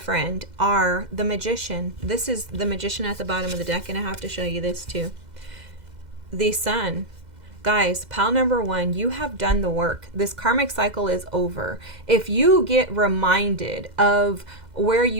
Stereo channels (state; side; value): late; left; 2.0 ms